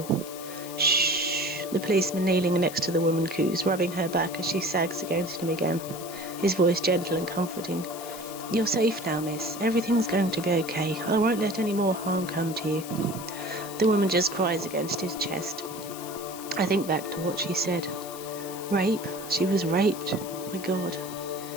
Shh, the policeman kneeling next to the woman coos, rubbing her back as she sags against him again, his voice gentle and comforting. You're safe now, miss. Everything's going to be okay. I won't let any more harm come to you. The woman just cries against his chest. I think back to what she said. Rape? She was raped. My God.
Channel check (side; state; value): left; noise; hiss, 13 dB below the sound